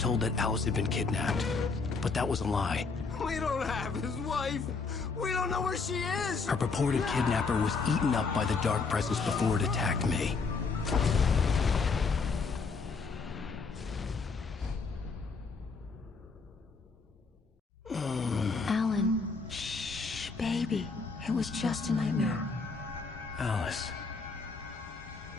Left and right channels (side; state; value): right; quieter; 4.5 dB